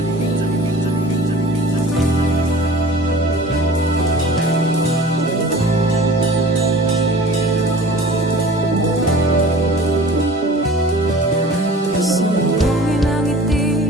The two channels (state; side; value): normal; both; correlation 0.43